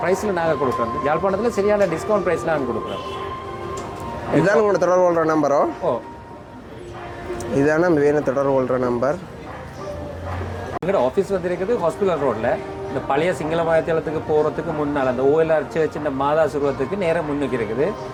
ப்ரைஸில் நாங்கள் கொடுக்குறோம். யாழ்ப்பாணத்தில் சரியான டிஸ்கவுண்ட் ப்ரைஸில் நாங்கள் கொடுக்குறோம். இதுதான் உங்களோட தொடர்பு கொள்கிற நம்பரோ? ஓ, இதுதானே வேணும் தொடர்பு கொள்கிற நம்பர். எங்களோட ஆஃபீஸ் வந்து இருக்குது ஹாஸ்பிட்டல் ரோட்டில். இந்த பழைய சிங்கள மாயத்தளத்துக்கு போகிறதுக்கு முன்னால் அந்த OLR சர்ச் இந்த மாதா சுருவத்துக்கு நேரம் முன்னுக்கு இருக்குது.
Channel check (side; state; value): both; identical; correlation 1.00